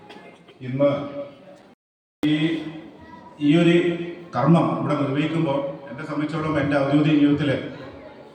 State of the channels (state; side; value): identical; both; correlation 1.00